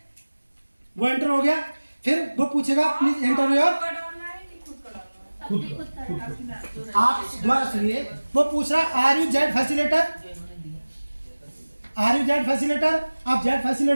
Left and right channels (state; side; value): inverted; both; correlation -1.00